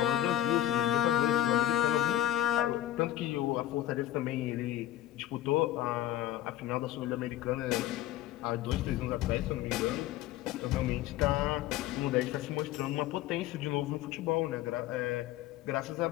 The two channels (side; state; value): right; quieter; 13.5 dB